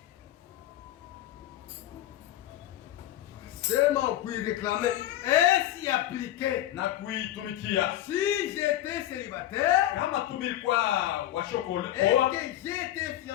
Seulement pour y réclamer et s'y appliquer. Na kuitumikia. Si j'étais célibataire Kama tumilikuwa washokole et que j'étais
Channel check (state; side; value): quieter; right; 13.3 dB